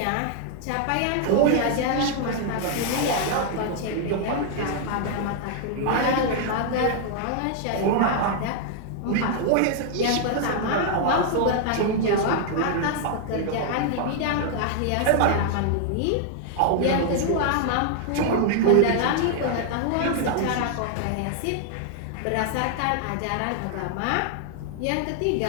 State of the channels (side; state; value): both; different; correlation 0.00